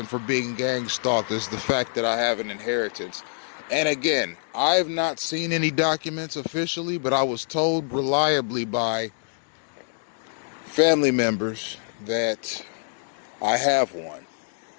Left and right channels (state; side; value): silent; right; digital silence